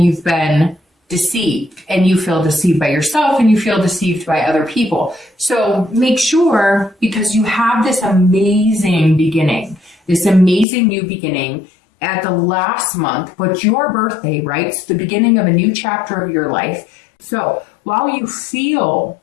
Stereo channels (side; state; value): right; drops out; at 10.7 s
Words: you've been deceived, and you feel deceived by yourself, and you feel deceived by other people. So make sure, because you have this amazing beginning, this amazing new beginning at the last month, but your birthday, right? It's the beginning of a new chapter of your life. So while you feel